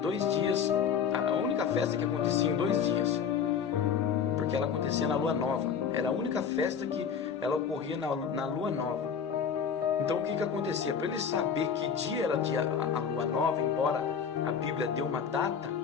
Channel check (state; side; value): quieter; right; 7.0 dB